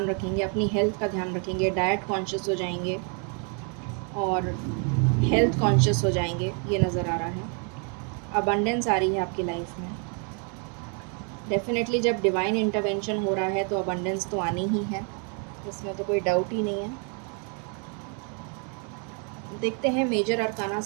रखेंगे, अपनी हेल्थ का ध्यान रखेंगे, डाइट कॉन्शियस हो जाएंगे और हेल्थ कॉन्शियस हो जाएंगे, ये नज़र आ रहा है। अबंडेंस आ रही है आपकी लाइफ में। डेफ़िनेटली जब डिवाइन इंटरवेंशन हो रहा है तो अबंडेंस तो आनी ही है, इसमें तो कोई डाउट ही नहीं है। देखते हैं मेजर अरकाना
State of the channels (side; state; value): left; quieter; 39.1 dB